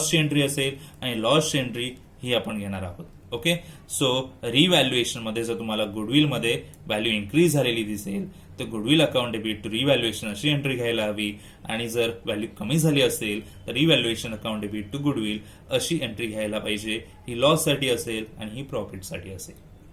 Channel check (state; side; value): identical; both; correlation 1.00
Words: एंट्री असेल, आणि लॉसची एंट्री ही आपण घेणार आहोत. ओके, सो रिव्हॅल्युएशन मध्ये जर तुम्हाला गुडविलमध्ये व्हॅल्यू इन्क्रीज झालेली दिसेल तर goodwill account debit to revaluation अशी एंट्री घ्यायला हवी, आणि जर व्हॅल्यू कमी झाली असेल तर revaluation account debit to goodwill अशी एंट्री घ्यायला पाहिजे. ही लॉससाठी असेल आणि ही प्रॉफिटसाठी असेल.